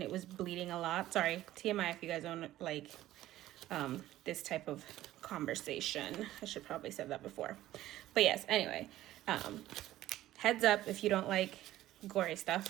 it was bleeding a lot. Sorry, TMI if you guys don't like this type of conversation. I should probably said that before. But yes, anyway, heads up if you don't like gory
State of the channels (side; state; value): left; quieter; 14.6 dB